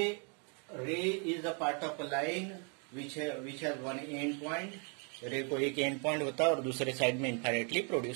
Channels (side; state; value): left; quieter; 38.5 dB